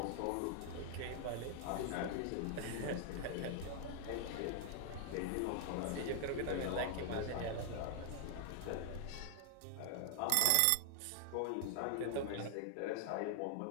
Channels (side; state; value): both; different; correlation 0.00